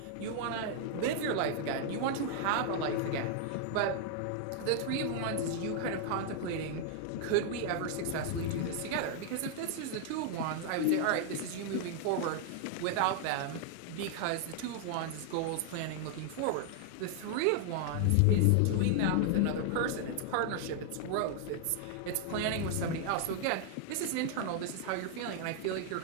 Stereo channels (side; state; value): both; different; correlation 0.00